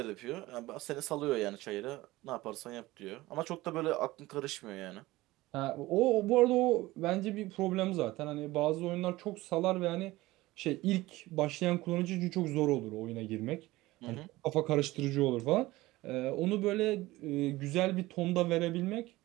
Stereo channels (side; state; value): left; quieter; 18.7 dB